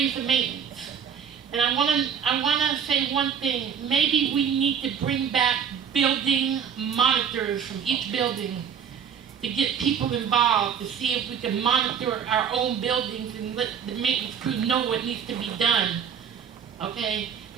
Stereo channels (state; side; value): quieter; left; 7.5 dB